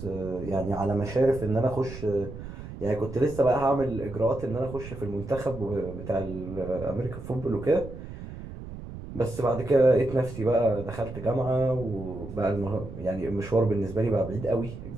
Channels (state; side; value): noise; right; rumble, 11 dB below the sound